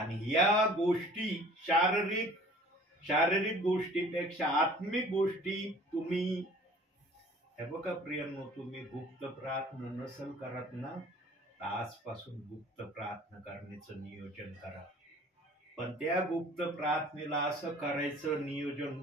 या गोष्टी शारीरिक गोष्टीपेक्षा आत्मिक गोष्टी तुम्ही हे बघा प्रियांनो, तुम्ही गुप्त प्रार्थना नसल करत ना, आजपासून गुप्त प्रार्थना करण्याचं नियोजन करा. पण त्या गुप्त प्रार्थनेला असं करायचं नियोजन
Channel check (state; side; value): normal; both; correlation 0.50